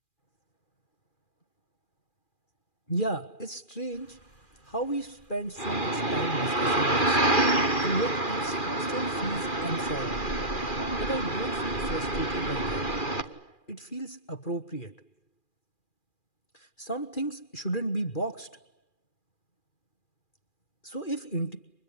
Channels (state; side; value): late; right; 2.4 ms